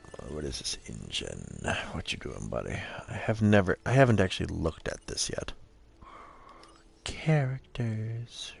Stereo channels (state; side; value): identical; both; correlation 1.00